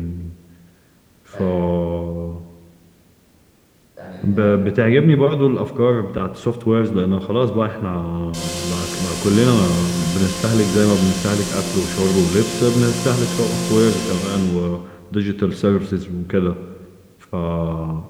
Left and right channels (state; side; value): identical; both; correlation 1.00